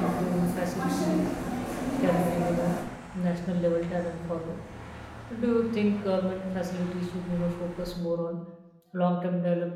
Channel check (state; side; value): identical; both; correlation 1.00